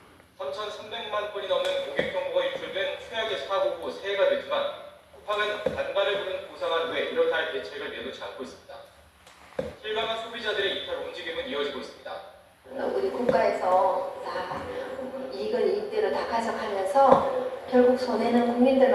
3,300만 건이 넘는 고객 정보가 유출된 최악의 사고 후 새해가 됐지만 쿠팡은 단발을 부른 보상안 외 이렇다 할 대책을 내놓지 않고 있습니다. 실감한 소비자들의 이탈 움직임은 이어지고 있습니다. 우리 국가에서 다 이익을 이익대로 다 가져가면서 결국 손해는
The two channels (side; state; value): both; identical; correlation 1.00